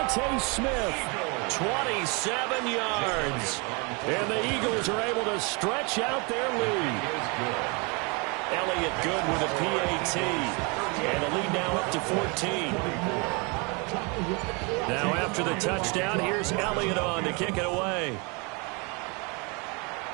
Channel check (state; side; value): quieter; left; 30.8 dB